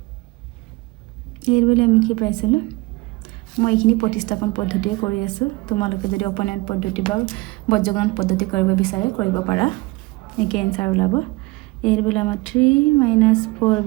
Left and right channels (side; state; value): left; quieter; 22.5 dB